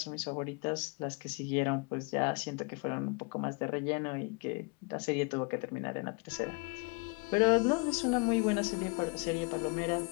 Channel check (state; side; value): quieter; right; 31.6 dB